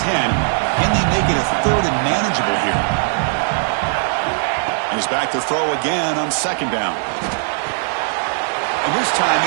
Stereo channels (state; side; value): silent; left; 61 dB below the other